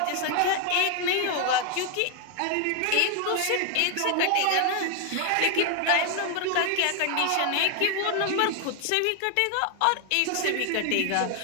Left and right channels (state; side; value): different; both; correlation 0.00